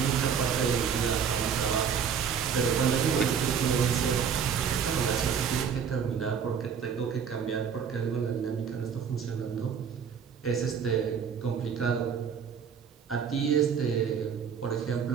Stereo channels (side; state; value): left; quieter; 7.2 dB